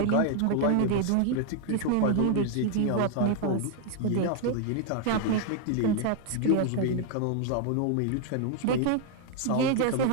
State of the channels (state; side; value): different; both; correlation 0.00